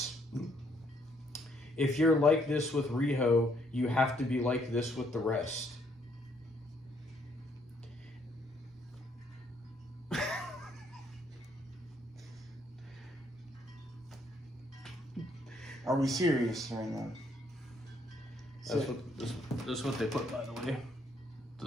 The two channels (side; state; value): both; normal; correlation 0.69